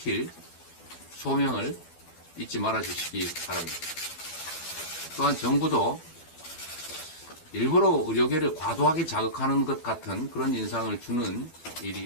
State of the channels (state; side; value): late; right; 12 ms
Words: 소명을 잊지 말아 주시기 바랍니다. 또한 정부도 일부러 의료계를 과도하게 자극하는 것 같은 그런 인상을 주는 일이